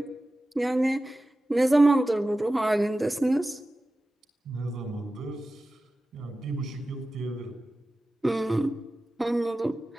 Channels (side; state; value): both; normal; correlation 0.95